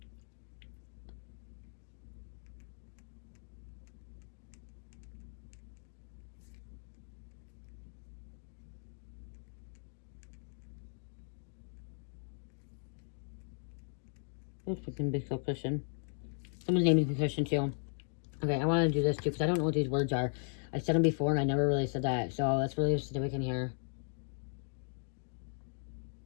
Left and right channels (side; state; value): right; silent; 53 dB below the other